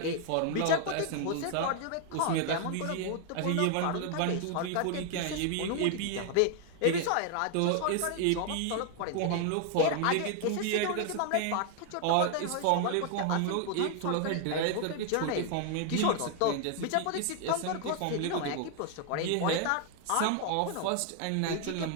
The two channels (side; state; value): both; different; correlation 0.00